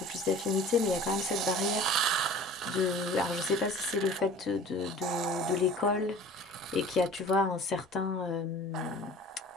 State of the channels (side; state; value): both; normal; correlation 0.44